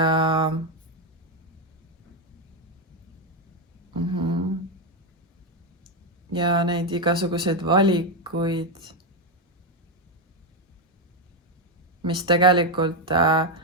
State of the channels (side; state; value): both; normal; correlation 0.05